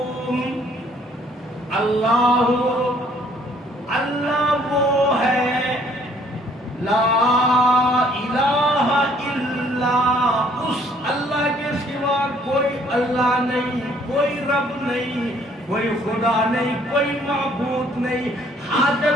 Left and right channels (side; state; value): both; normal; correlation 0.61